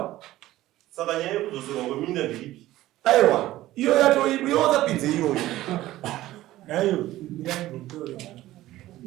saka nyaya yekudzoserwa kweminda ndeipi aiwa iyo yatoipo iwozapinze iyoyo nayo mirangotore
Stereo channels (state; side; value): quieter; left; 15.7 dB